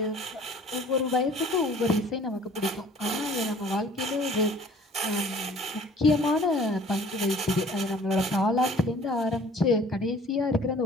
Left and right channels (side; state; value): both; normal; correlation 0.52